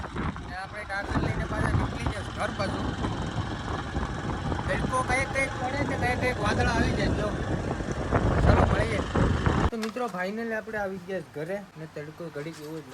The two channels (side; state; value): both; identical; correlation 1.00